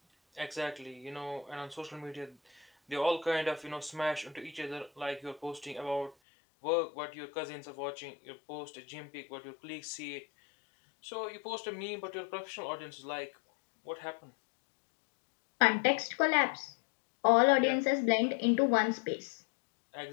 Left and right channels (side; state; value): right; drops out; at 6.2 s